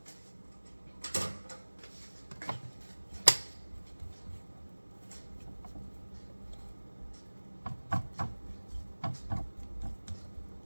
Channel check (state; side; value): inverted; both; correlation -1.00